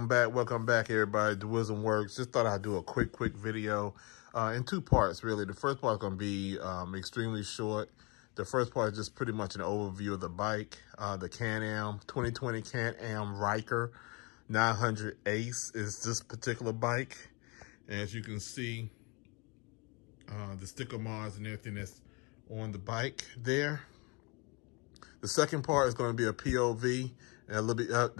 back, everybody. The Wisdom Works. Just thought I'd do a quick video in two parts, really. The first part is going to be extremely short. The first part is just pretty much an overview of the bike. The Can-Am 2020 Can-Am Ryker 900 Ace is this particular bike. And as you can see, the sticker mods and everything that's on the bike there. The second part is going to be a POV, and a little bit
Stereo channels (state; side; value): quieter; right; 29.6 dB